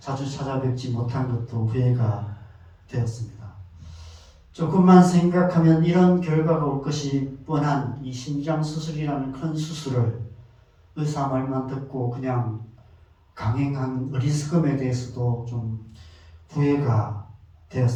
찾아뵙지 못한 것도 후회가 되었습니다. 조금만 생각하면 이런 결과가 올 것이 뻔한 이 심장 수술이라는 큰 수술을 의사 말만 듣고 그냥 강행한 어리석음에 대해서도 좀 후회가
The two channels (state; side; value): identical; both; correlation 1.00